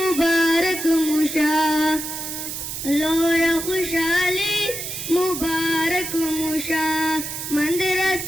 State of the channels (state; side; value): noise; right; hiss, 6 dB below the sound